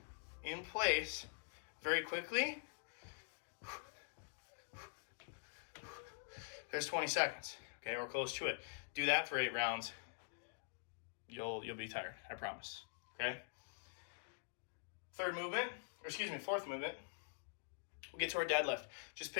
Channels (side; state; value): right; silent; digital silence